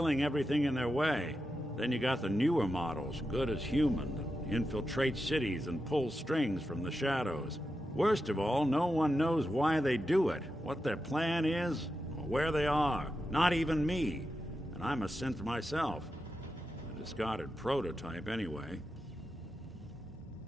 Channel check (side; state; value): both; normal; correlation 0.89